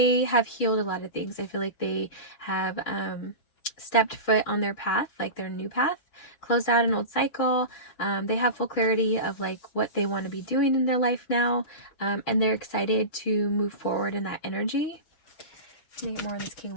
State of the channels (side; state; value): right; late; 6.5 ms